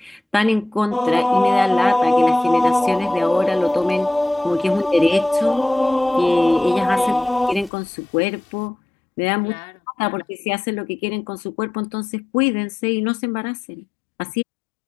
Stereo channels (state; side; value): drops out; right; at 7.7 s